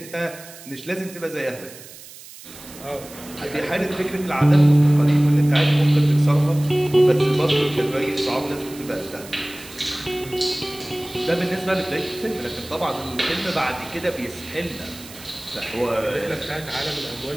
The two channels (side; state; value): right; noise; hiss, 17 dB below the sound